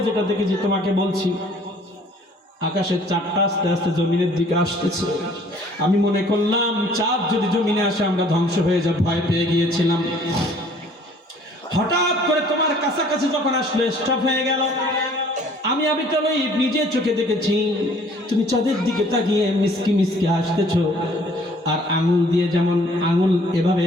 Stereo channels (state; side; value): normal; both; correlation 0.56